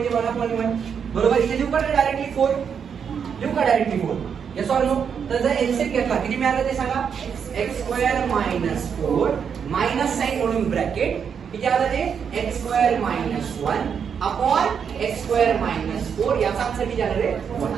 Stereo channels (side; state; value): left; quieter; 7.1 dB